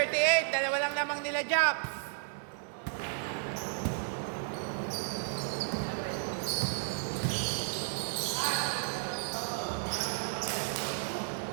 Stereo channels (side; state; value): left; silent; digital silence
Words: dalawa lang lamang nila Japs.